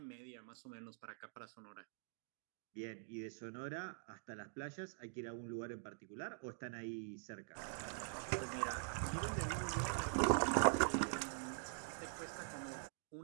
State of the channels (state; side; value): silent; left; digital silence